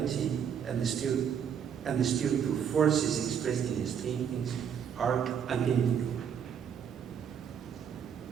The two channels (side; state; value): left; quieter; 8.0 dB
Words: and the spiritual forces expressed in his paintings are identical.